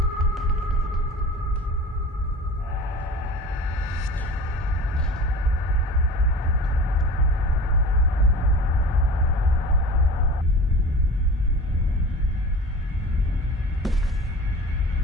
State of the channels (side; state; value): both; normal; correlation 0.38